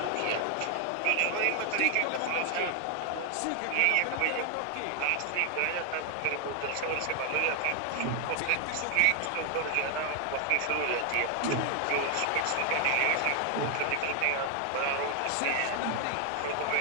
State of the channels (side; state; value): both; different; correlation 0.00